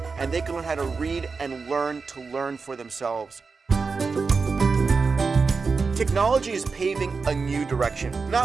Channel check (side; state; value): left; quieter; 4.7 dB